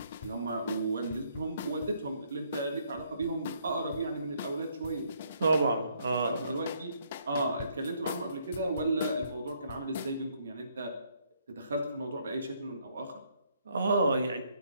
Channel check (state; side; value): inverted; both; correlation -0.69